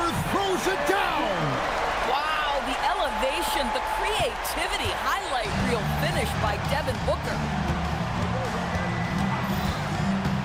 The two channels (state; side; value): identical; both; correlation 1.00